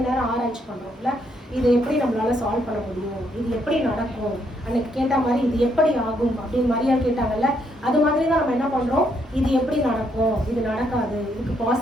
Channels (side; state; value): both; normal; correlation 0.74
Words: நேரம் ஆராய்ச்சி பண்ணுறோம் இல்லை, இதை எப்படி நம்மளால சால்வ் பண்ண முடியும், இது எப்படி நடக்கும், அன்னைக்கு கேட்ட மாதிரி இது எப்படி ஆகும் அப்படின்னு மரியாதை கேட்டாங்கல்ல, அது மாதிரி தான் நம்ம என்ன பண்ணுறோம், இது எப்படி நடக்கும், இது நடக்காது, இதுக்கு